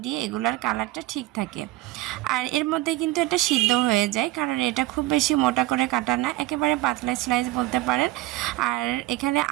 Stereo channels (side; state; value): left; quieter; 17.5 dB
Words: এগুলার কালারটা ঠিক থাকে। আর এর মধ্যে কিন্তু এটা সিদ্ধ হয়ে যায়, কারণ এটা খুব বেশি মোটা করে কাটা না, একেবারে পাতলা স্লাইস বলতে পারেন। আর এখানে